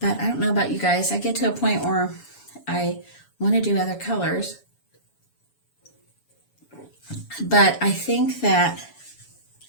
I don't know about you guys. I get to a point where I want to do other colors, but I think that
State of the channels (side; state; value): right; late; 7.1 ms